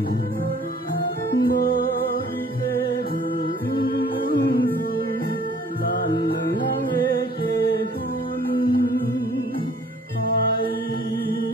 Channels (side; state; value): both; normal; correlation 0.55